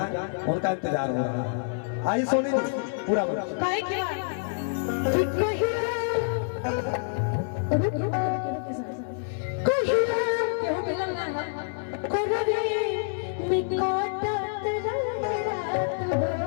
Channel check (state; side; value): silent; right; 60 dB below the other